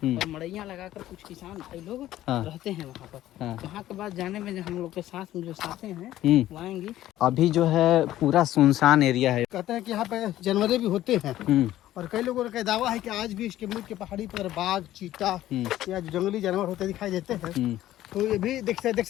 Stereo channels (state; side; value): quieter; right; 13.9 dB